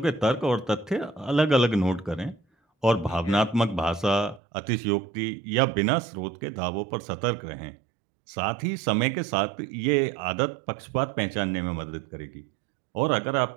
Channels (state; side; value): drops out; left; at 4.4 s